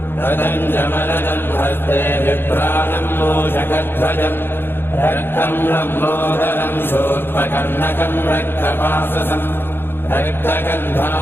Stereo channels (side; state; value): right; late; 0.10 ms